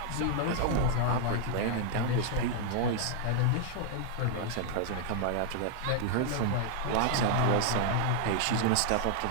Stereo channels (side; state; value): both; different; correlation 0.00